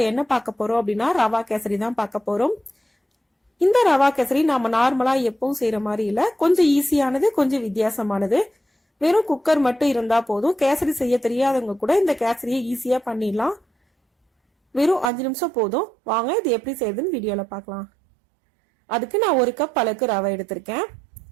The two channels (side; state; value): left; drops out; at 15.1 s